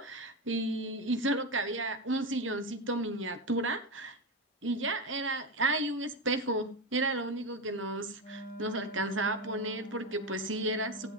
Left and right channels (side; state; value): both; normal; correlation 0.15